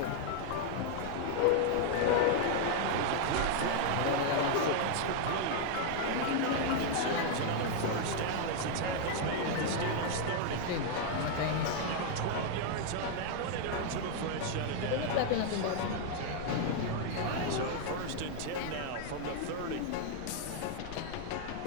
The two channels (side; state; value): both; different; correlation 0.00